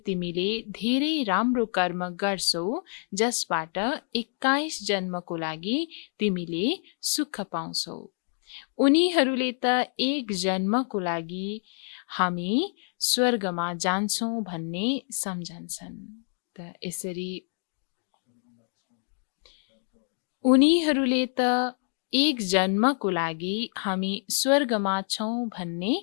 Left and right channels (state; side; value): silent; right; 60 dB below the other